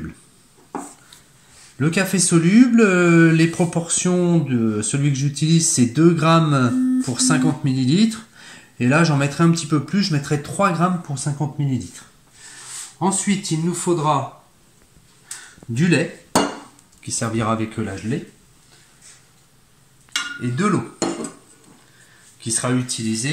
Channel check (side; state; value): both; identical; correlation 1.00